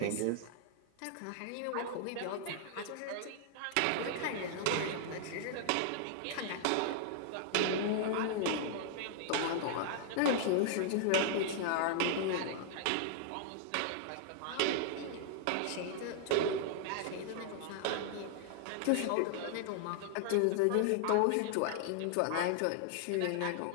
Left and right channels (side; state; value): both; different; correlation -0.01